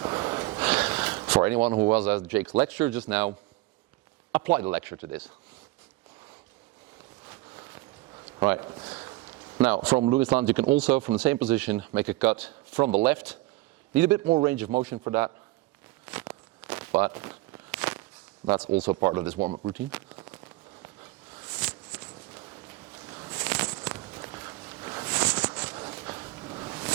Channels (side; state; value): left; quieter; 19.9 dB